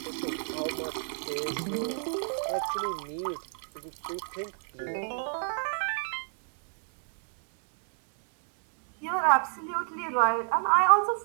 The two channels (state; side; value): silent; left; digital silence